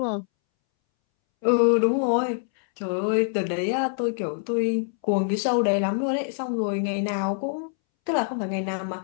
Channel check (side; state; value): right; silent; 62 dB below the other